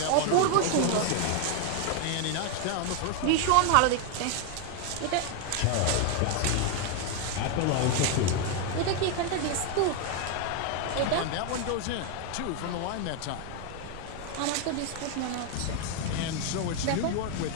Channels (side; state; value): both; different; correlation 0.01